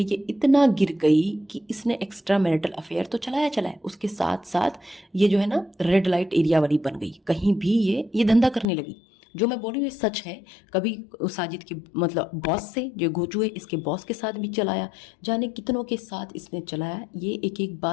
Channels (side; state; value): right; drops out; at 8.7 s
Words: ये इतना गिर गई कि इसने एक्स्ट्रा मैरिटल अफेयर तो चलाया, उसके साथ साथ ये जो है ना रेड लाइट एरिया वाली बन गई, कहीं भी ये धंधा करने लगी। जो मैं बोल रही हूँ ये सच है। कभी साजिद के मतलब बॉस से, जो घोचू है इसके बॉस के साथ भी चलाया, जाने कितनों के साथ इसने चलाया। ये एक एक